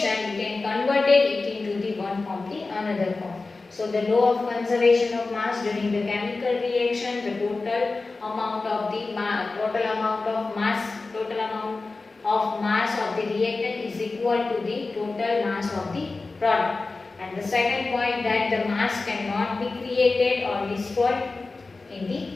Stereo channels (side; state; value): right; quieter; 3.7 dB